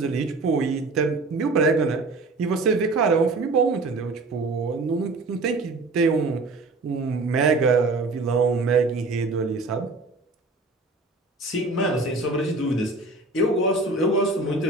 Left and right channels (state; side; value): quieter; left; 3.3 dB